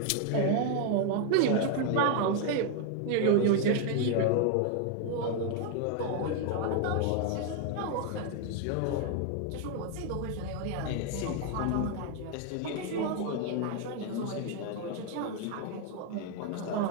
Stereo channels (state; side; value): different; both; correlation 0.01